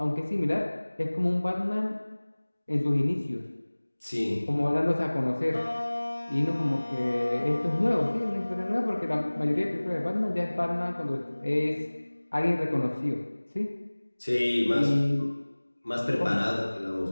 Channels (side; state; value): both; inverted; correlation -1.00